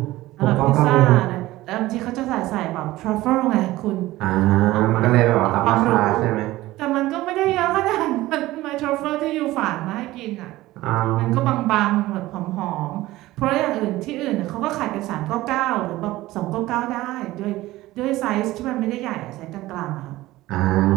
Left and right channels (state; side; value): quieter; left; 17.3 dB